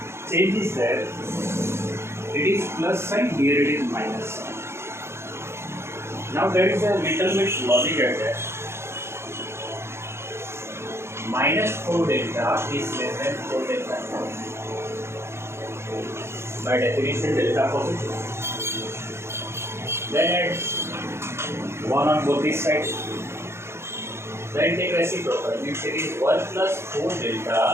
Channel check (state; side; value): late; left; 0.12 ms